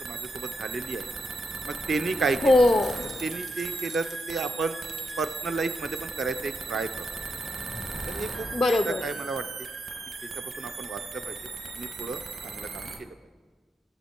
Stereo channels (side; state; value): both; normal; correlation 0.83